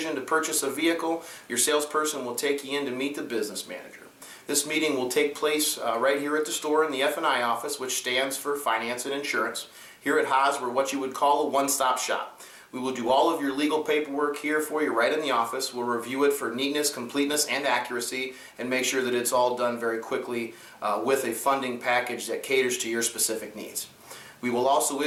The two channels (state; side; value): identical; both; correlation 1.00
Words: to purchase a vehicle, your salesperson will take you in to meet the business manager. This meeting will take place right here at the store in the F&I office, which stands for Finance and Insurance. Here at Haas, we're what you would call a one-stop shop. We will do all of your legal paperwork here for you right in the office. We'll review it for neatness, completeness, and accuracy, and make sure that it's all done very quickly with a funding package that caters to your specific needs. We will also